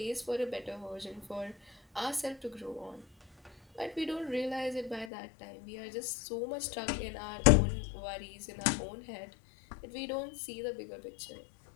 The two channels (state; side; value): drops out; right; at 5.1 s